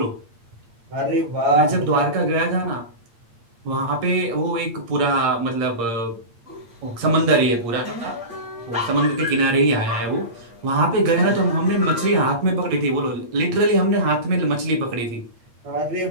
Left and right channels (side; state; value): left; late; 8.6 ms